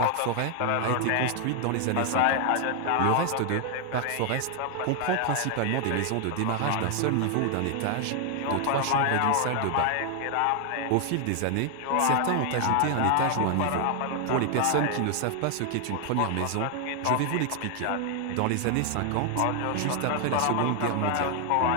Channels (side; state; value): both; different; correlation 0.00